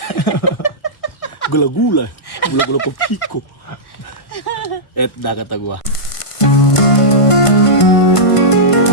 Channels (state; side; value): late; right; 1.5 ms